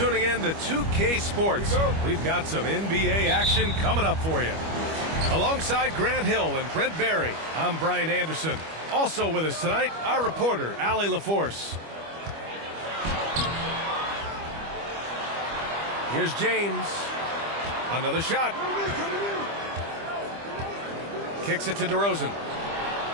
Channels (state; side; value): late; left; 25 ms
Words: in to 2K Sports. We've got some NBA action coming up for you. Alongside Grant Hill and Brent Barry, I'm Brian Anderson. Also with us tonight, our reporter, Allie LaForce. Here's James. Another shot. Kicks it to DeRozan.